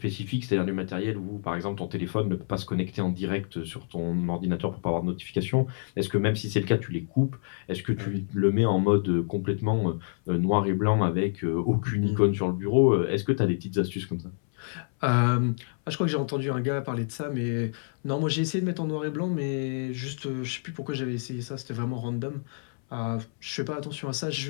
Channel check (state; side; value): silent; right; 59 dB below the other